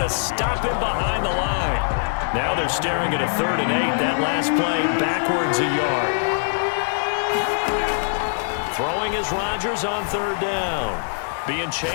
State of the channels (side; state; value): right; silent; digital silence